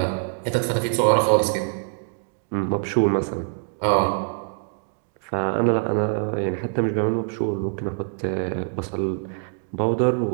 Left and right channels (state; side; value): silent; left; digital silence